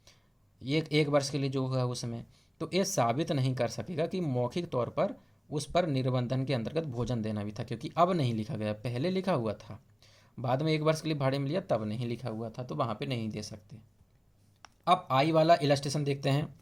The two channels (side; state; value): both; identical; correlation 1.00